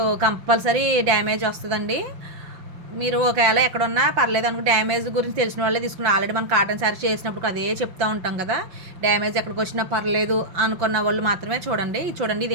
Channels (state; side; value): late; left; 5.9 ms